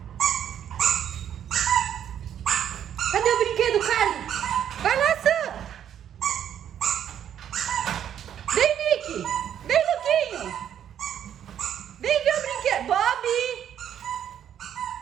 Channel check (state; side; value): quieter; left; 9.7 dB